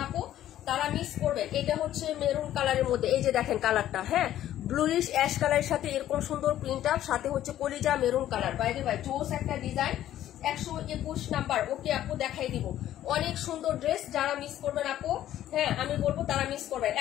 আপু তারা মিস করবেন। এটা হচ্ছে মেরুন কালারের মধ্যে, এই যে দেখেন কালারটা, হ্যাঁ ব্লুইশ অ্যাশ কালারের সাথে এরকম সুন্দর প্রিন্ট আপ, সাথে হচ্ছে কলিজা মেরুন কালার। বাইরে ভাই জোস একটা ডিজাইন। 121 নাম্বার, ওকে আপু দেখাই দিব। অনেক সুন্দর ড্রেস, যারা মিস করবেন আপু, হ্যাঁ আমি বলবো তারা মিস করবেন।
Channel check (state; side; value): quieter; right; 12.4 dB